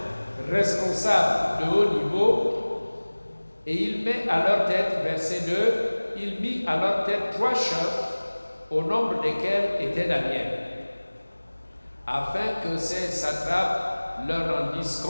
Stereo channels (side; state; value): both; inverted; correlation -1.00